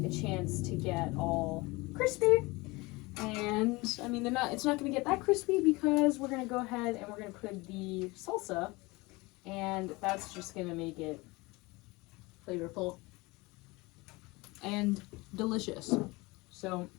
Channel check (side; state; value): right; quieter; 23.6 dB